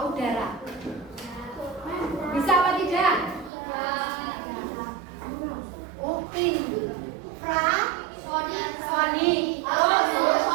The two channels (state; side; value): drops out; left; at 3.5 s